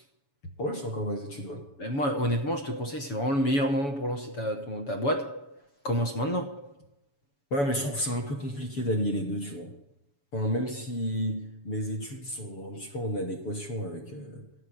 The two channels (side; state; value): right; late; 7.1 ms